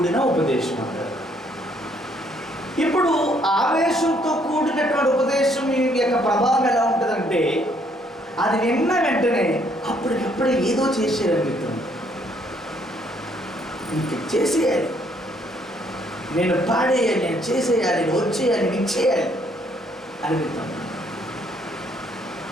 ఉపదేశం అంటారు. ఇప్పుడు ఆవేశంతో కూడినటువంటి ఉపదేశం యొక్క ప్రభావం ఎలా ఉంటుందంటే అది విన్న వెంటనే అప్పటికప్పుడే ఏదో చేసేయాలనిపిస్తుంది. ఇంక చేసేయాలి, నేను పాడేయాలి, నేను చేసేయాలి, నేను వచ్చేయాలి, నేను చేయాలి అనిపిస్తుంది.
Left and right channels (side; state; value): both; normal; correlation 0.67